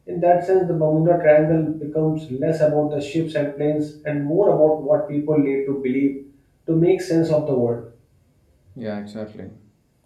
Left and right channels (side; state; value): both; identical; correlation 1.00